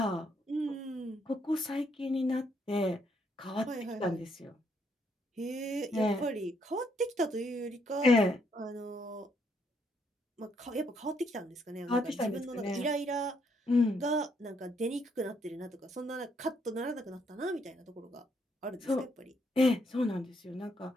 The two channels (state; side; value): normal; both; correlation 0.73